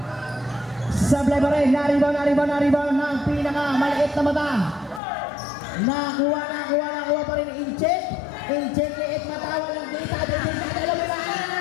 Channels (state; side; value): drops out; right; at 5.0 s